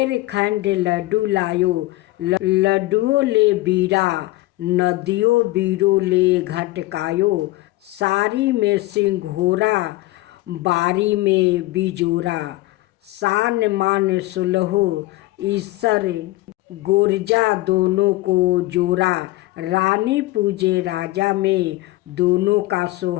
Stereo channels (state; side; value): quieter; right; 19.2 dB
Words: खंड लड्डू लायो, लड्डुओं ले बीरा, नदियों बीरो ले घटकायो। सारी में सिंघोरा, बारी में बिजोरा, सान मान 16 ईश्वर गोरजा दोनों को जोरा। रानी पूजे राजा में, दोनों का